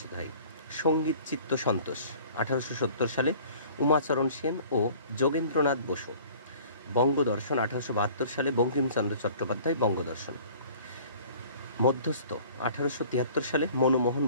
হয়। সঙ্গীত চিত্ত সন্তোষ 1870 সালে উমাচরণ সেন ও যোগেন্দ্রনাথ বসু। বঙ্গদর্শন 1872 সালে বঙ্কিমচন্দ্র চট্টোপাধ্যায় বঙ্গদর্শন। মধ্যস্থ 1873 সালে মনমোহন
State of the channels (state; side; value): inverted; both; correlation -0.49